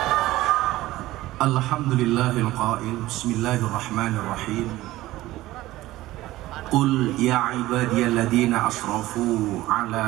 Alhamdulillahil qail bismillahirrahmanirrahim. Qul ya ibadiyalladzina asrafu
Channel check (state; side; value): quieter; left; 16.8 dB